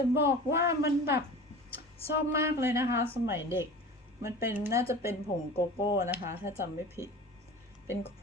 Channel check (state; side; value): normal; both; correlation 0.37